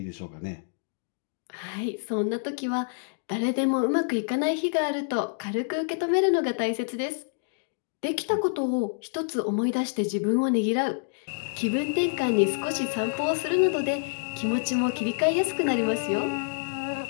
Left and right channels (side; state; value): right; silent; digital silence